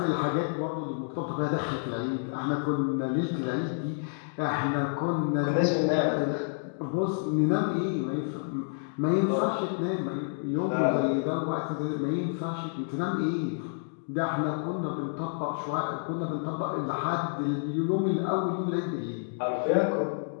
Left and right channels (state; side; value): silent; right; digital silence